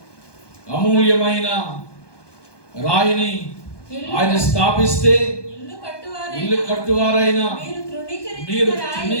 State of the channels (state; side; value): late; right; 1.2 ms